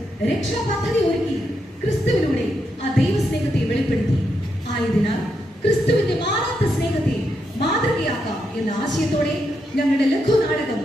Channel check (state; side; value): normal; both; correlation 0.82